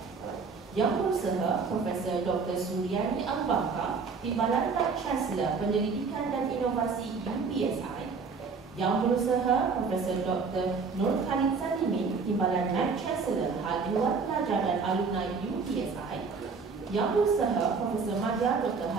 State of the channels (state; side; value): quieter; left; 5.0 dB